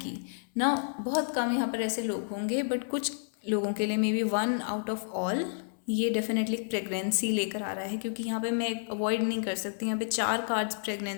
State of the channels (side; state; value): right; silent; 58 dB below the other